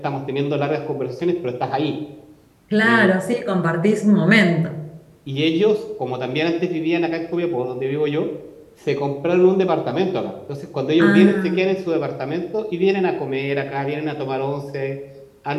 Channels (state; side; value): identical; both; correlation 1.00